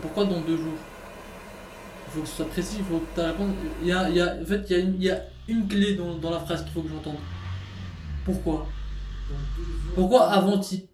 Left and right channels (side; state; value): both; identical; correlation 1.00